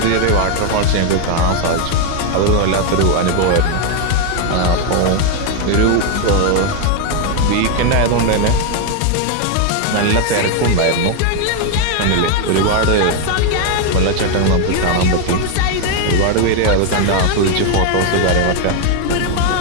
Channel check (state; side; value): different; both; correlation 0.01